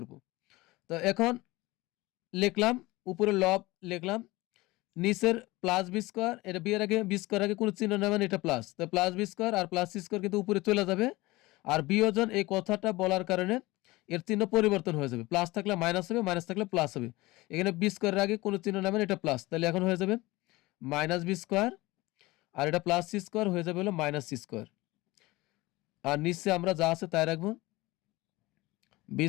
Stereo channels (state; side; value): quieter; right; 20.7 dB